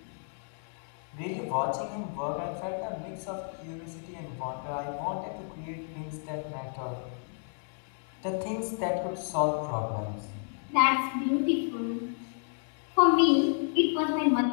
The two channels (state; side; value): silent; right; 57 dB below the other